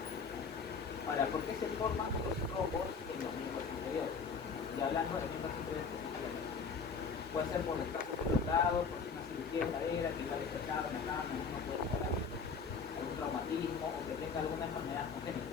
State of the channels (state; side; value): quieter; right; 5.4 dB